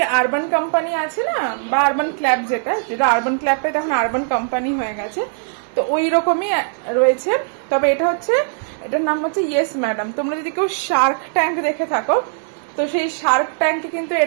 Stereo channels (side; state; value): left; silent; digital silence